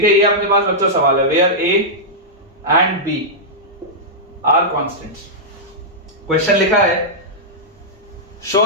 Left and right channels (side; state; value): both; normal; correlation -0.09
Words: है। ये अपने पास बच्चों सवाल है, where a and b are constants। Question लिखा है show